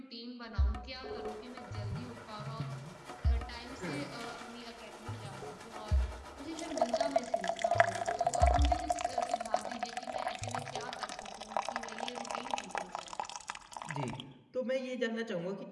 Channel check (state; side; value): identical; both; correlation 1.00